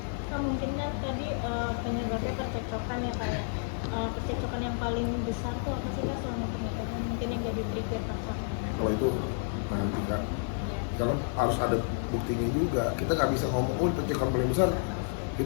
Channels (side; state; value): right; silent; digital silence